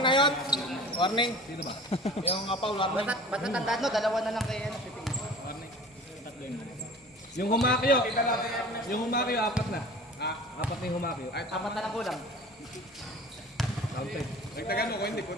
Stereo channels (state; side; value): normal; both; correlation 0.42